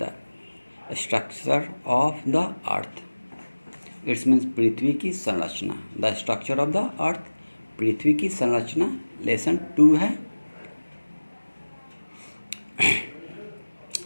structure of the earth. It's means पृथ्वी की संरचना। The structure of the earth, पृथ्वी की संरचना, लेसन 2 है।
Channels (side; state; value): both; inverted; correlation -1.00